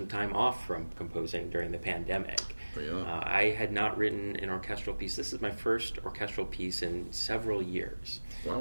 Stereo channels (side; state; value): both; inverted; correlation -1.00